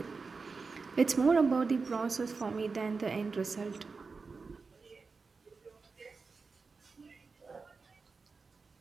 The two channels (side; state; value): left; quieter; 4.5 dB